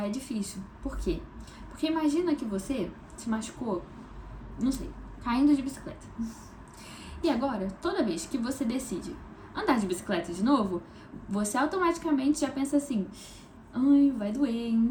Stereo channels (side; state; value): both; identical; correlation 1.00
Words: difícil. Por quê? Porque imagina que você se machucou, não sei, caindo de bicicleta. E agora, toda vez que você decide andar de bicicleta de novo, você automaticamente já pensa assim: ai, vai doer,